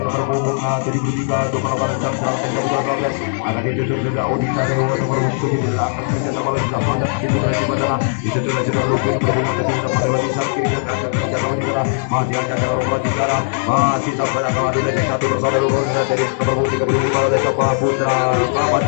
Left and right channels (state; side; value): silent; right; digital silence